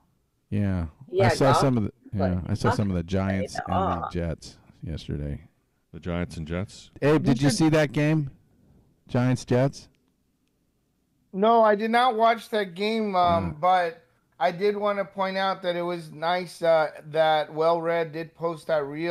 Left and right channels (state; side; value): identical; both; correlation 1.00